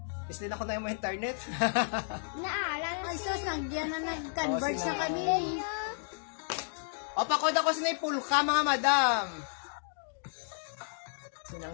Is din ako na yung internet. Naalala Ay, sus, nandiyan na nag-converge Oh, na sila. kami. O, pakod ako sa pulka, mga madam.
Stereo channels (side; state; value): right; silent; digital silence